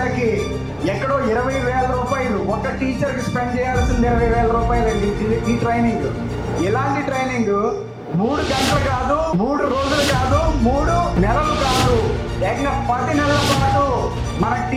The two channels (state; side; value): identical; both; correlation 1.00